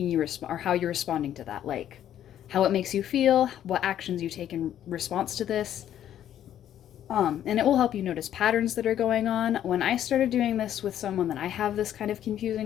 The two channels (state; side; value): quieter; right; 10.9 dB